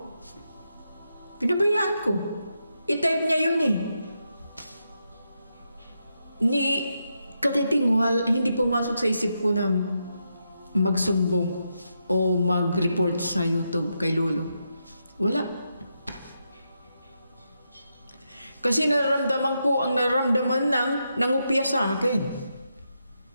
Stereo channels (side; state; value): both; inverted; correlation -0.84